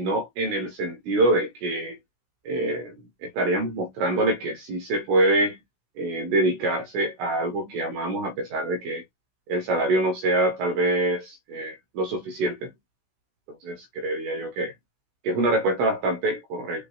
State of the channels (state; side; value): late; left; 16 ms